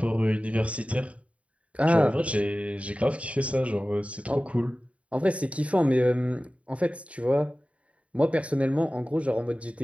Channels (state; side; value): late; left; 0.064 ms